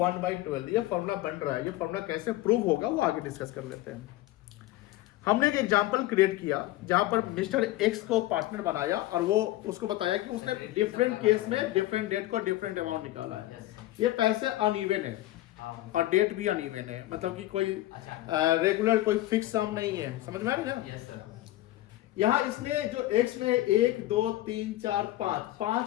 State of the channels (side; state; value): right; quieter; 16.2 dB